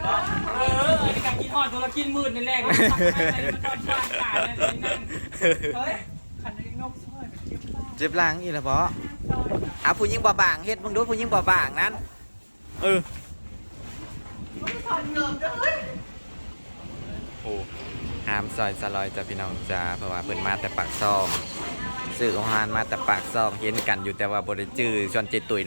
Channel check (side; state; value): both; inverted; correlation -1.00